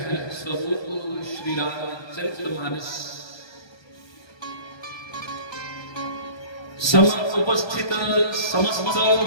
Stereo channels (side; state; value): right; late; 1.3 ms